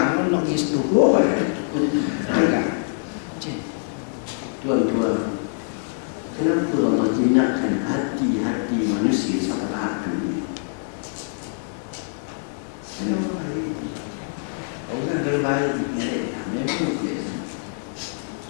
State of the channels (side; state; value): right; silent; 60 dB below the other